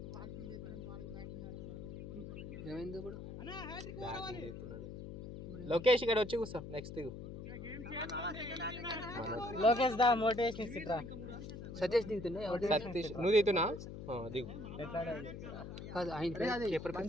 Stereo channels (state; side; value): noise; left; hum, 9 dB below the sound